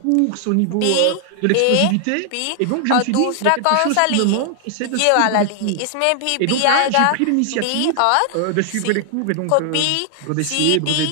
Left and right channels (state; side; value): different; both; correlation 0.00